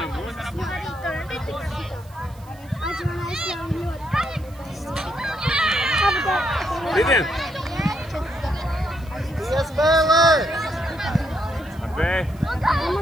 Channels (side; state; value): right; noise; hiss, 26 dB below the sound